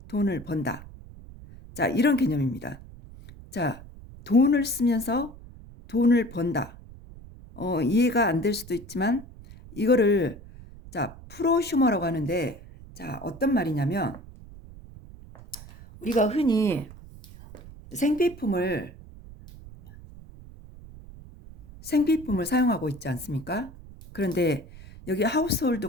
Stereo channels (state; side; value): noise; right; rumble, 18 dB below the sound